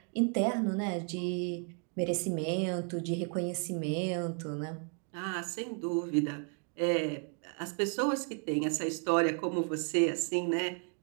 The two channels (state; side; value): quieter; left; 39.9 dB